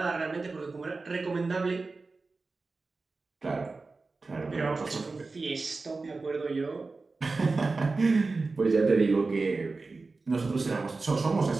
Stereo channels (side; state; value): left; quieter; 3.8 dB